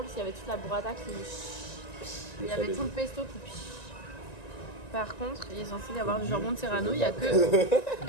s'il y avait toute la burrata qui. Il y avait tout le pesto qui. Par contre, il est censé y avoir du jambon de Serrano, il n'y a que.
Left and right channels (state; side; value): late; right; 1.9 ms